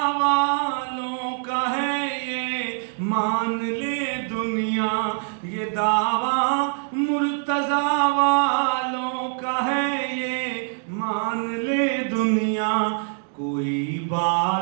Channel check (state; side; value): silent; left; 63 dB below the other